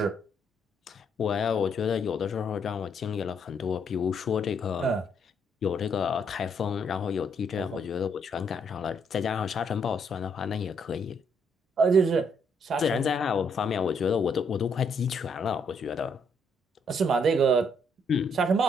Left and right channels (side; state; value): both; normal; correlation 0.72